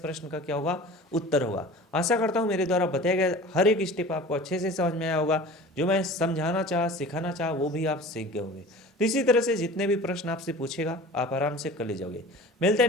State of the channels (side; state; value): both; normal; correlation 0.40